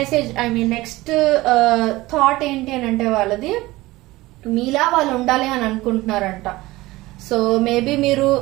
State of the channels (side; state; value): left; quieter; 19.3 dB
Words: నెక్స్ట్ థాట్ ఏంటి అని అంటే వాళ్ళది మీలా వాళ్ళు ఉండాలి అని అనుకుంటున్నారంట. సో మేబీ మీరు